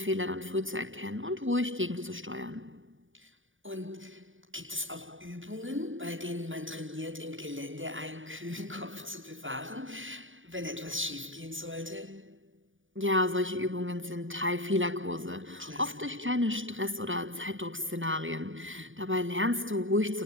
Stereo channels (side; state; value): left; late; 0.57 ms